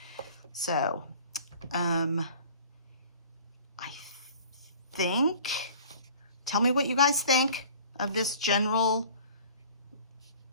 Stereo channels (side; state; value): both; inverted; correlation -0.47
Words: So, I think, tell me what you guys think of this general